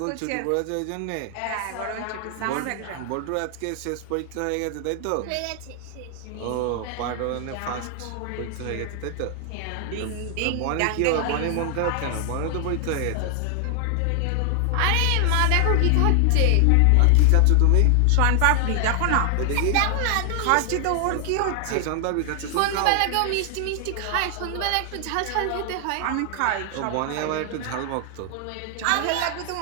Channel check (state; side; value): different; both; correlation 0.00